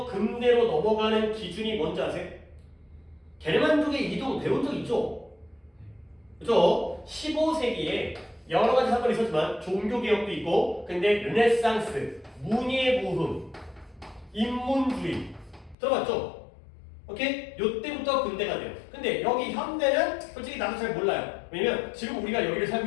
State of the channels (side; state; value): right; drops out; at 15.8 s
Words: 근대로 넘어가는 기준이 뭔지 아세요? 게르만족의 이동 배운 적 있죠? 그죠? 15세기에 여러 가지 사건이 있었지만 종교개혁도 있고 근데 르네상스, 문예부흥, 인문주의 들어봤죠? 오케이? 요때부터 근대가 돼요. 근데 여기 현대는 솔직히 나도 잘 몰라요. 왜냐면 지금 우리가 여기를